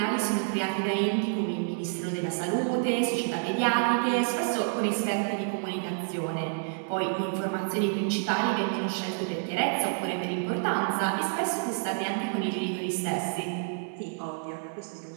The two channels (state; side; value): silent; left; 59 dB below the other